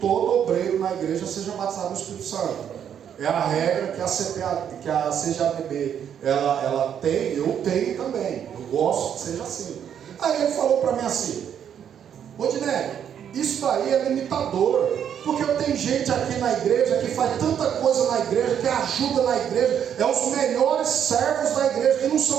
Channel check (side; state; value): left; quieter; 8.9 dB